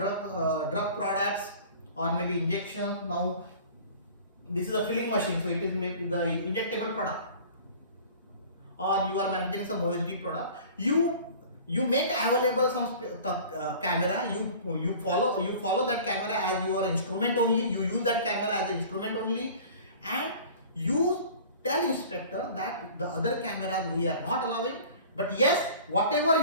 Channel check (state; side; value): inverted; both; correlation -0.44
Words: products or maybe injection, now this is a filling machine, so it is maybe the injectable product, or you are manufacturing some OSD product, you make available some camera, you follow that camera as your instrument only, you use that camera as an instrument only, and you tell inspector that the other cameras we are not allowing, but yes, whatever